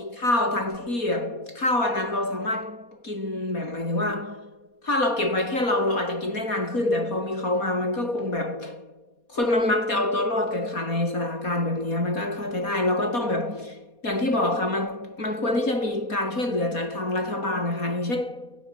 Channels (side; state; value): right; late; 4.2 ms